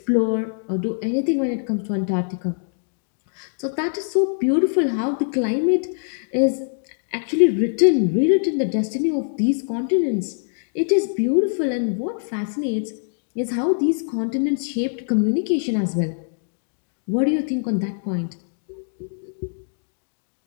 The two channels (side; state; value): right; silent; digital silence